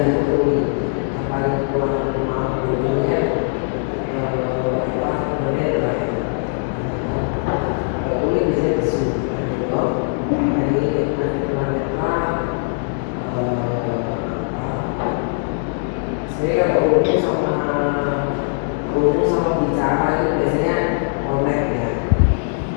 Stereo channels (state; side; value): silent; right; 64 dB below the other